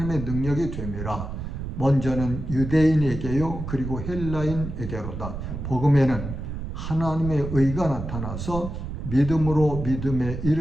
능력이 됨이라. 먼저는 유대인에게요 그리고 헬라인에게로다. 복음에는 하나님의 의가 나타나서 믿음으로 믿음에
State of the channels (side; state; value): right; noise; rumble, 6 dB below the sound